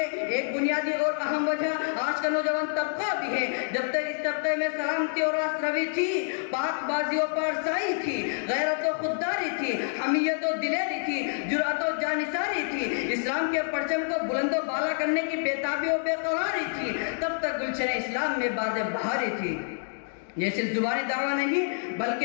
ایک بنیادی اور اہم وجہ آج کا نوجوان طبقہ بھی ہے. جب تک اس طبقے میں سلامتی اور راست روی تھی، پاک بازی و پارسائی تھی، غیرت و خودداری تھی، حمیت و دلیری تھی، جرأت و جانثاری تھی، اسلام کے پرچم کو بلند و بالا کرنے کی بےتابی و بے قراری تھی، تب تک گلشن اسلام میں باد بہاری تھی. یہ صرف زبانی دعویٰ نہیں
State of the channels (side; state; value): right; silent; digital silence